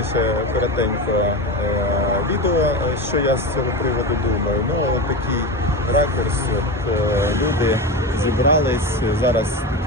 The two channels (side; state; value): both; normal; correlation 0.21